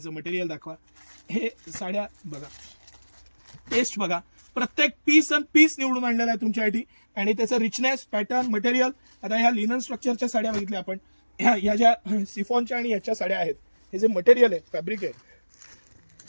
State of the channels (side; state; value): both; inverted; correlation -1.00